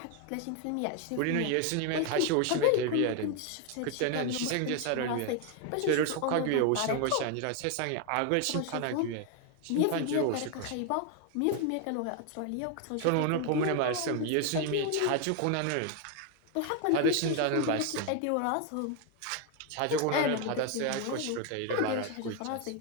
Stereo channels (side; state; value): both; different; correlation 0.01